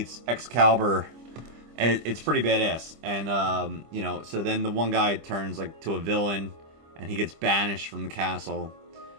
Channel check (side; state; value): left; late; 25 ms